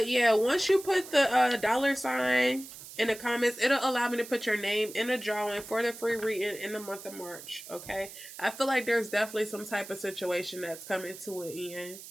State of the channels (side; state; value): right; noise; hiss, 14 dB below the sound